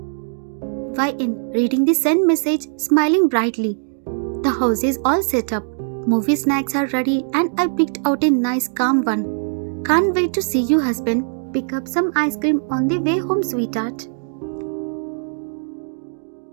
YN reading the sent message, smiling brightly. The house is all set up. Movie snacks are ready and I picked out a nice calm one. Can't wait to see you, husband. Pick up some ice cream on the way home, sweetheart.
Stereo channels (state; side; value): silent; left; digital silence